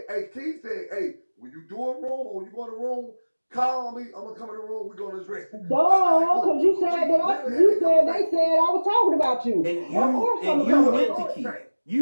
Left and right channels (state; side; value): inverted; both; correlation -1.00